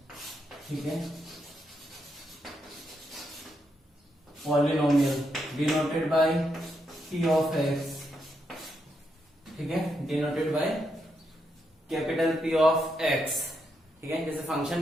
ठीक है, polynomial denoted by p of x। ठीक है, denoted by capital P of x। ठीक है, जैसे फंक्शन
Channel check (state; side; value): normal; both; correlation 0.81